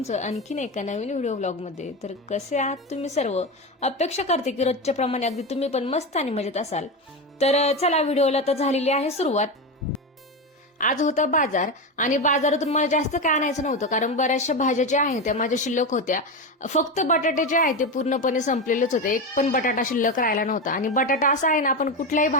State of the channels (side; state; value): both; normal; correlation 0.17